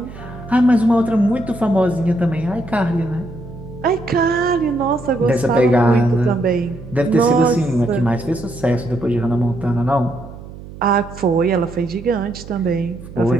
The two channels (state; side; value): noise; right; hum, 15 dB below the sound